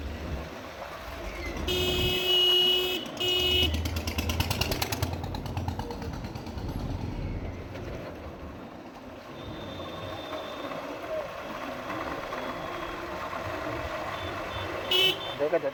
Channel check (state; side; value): identical; both; correlation 1.00